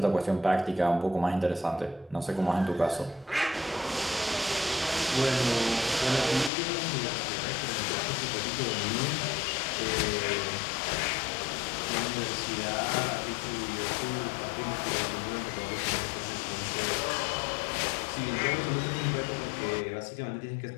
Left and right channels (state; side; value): drops out; right; at 6.5 s